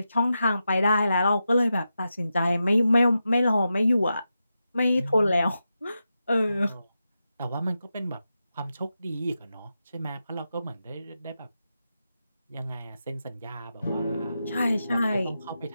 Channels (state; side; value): inverted; both; correlation -0.89